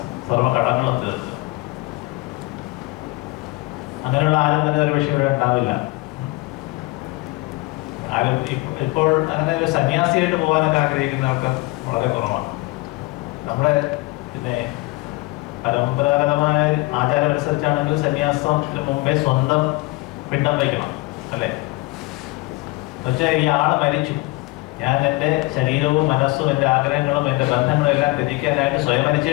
സർവ്വ കടങ്ങളും തീർക്കുക. അങ്ങനെയുള്ള ആരും തന്നെ ഒരു വിഷയം ഇവിടെ ഉണ്ടാവില്ല. ആരും ഇപ്പോൾ അങ്ങനെ ഒരു സന്യാസിയായിട്ട് പോകാനൊക്കെ ആഗ്രഹിക്കുന്ന ആൾക്കാർ വളരെ കുറവാണ്. നമ്മുടെ പിന്നെ പരമ്പരാഗതമായ ആചാരം അനുസരിച്ചാണെങ്കിൽ സന്യാസത്തിന് മുമ്പേ സ്വന്തം പിണ്ടം വയ്ക്കണം, അല്ലേ? എന്നുവെച്ചാൽ ഈ ആള് മരിച്ചു, ഞാൻ എൻ്റെ ശരീരവും മനസ്സും എൻ്റെ ആഗ്രഹങ്ങളും എൻ്റെ ബന്ധങ്ങളും എല്ലാം ത്യജിക്കാനായിട്ട് സ്വയം മരിച്ചു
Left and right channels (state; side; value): quieter; right; 22.4 dB